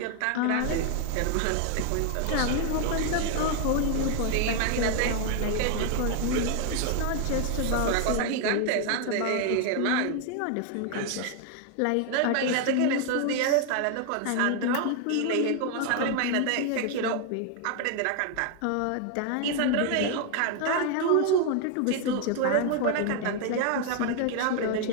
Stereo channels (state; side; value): different; both; correlation 0.00